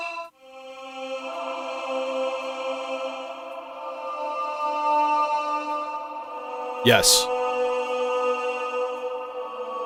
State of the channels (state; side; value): identical; both; correlation 1.00